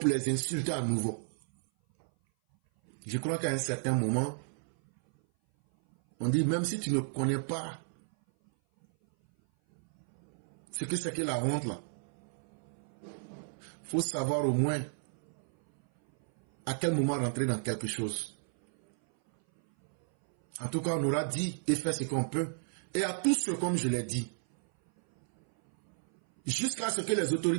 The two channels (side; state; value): left; silent; 56 dB below the other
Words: les insulter à nouveau. Je crois qu'à un certain moment, on dit même si tu ne connais pas ce que c'est que la honte là, faut savoir au moins à quel moment rentrer dans quelque chose. En tout cas, on aura dit et fait ce qu'on peut. Et à tous ceux, comme je l'ai dit, jusqu'à ce que les